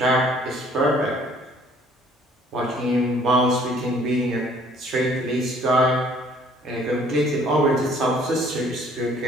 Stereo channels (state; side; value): normal; both; correlation 0.58